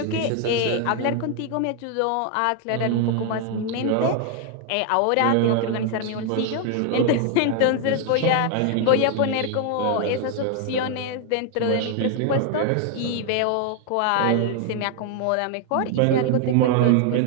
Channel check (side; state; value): both; different; correlation 0.00